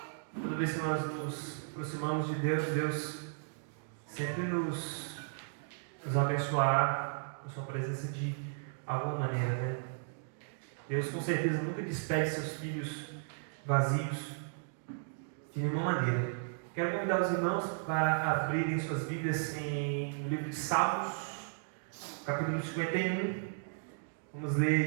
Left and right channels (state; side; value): silent; left; digital silence